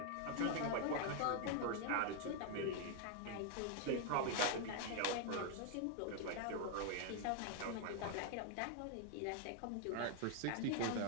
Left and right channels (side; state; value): both; different; correlation 0.00